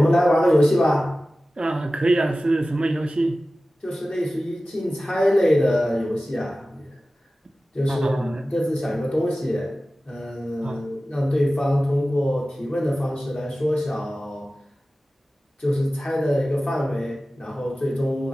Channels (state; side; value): normal; both; correlation 0.96